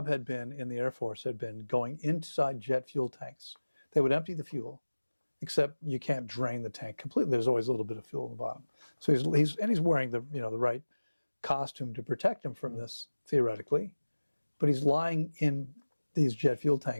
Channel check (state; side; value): inverted; both; correlation -1.00